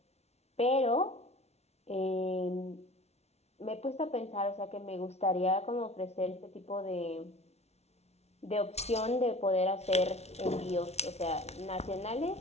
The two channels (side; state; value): right; late; 0.31 ms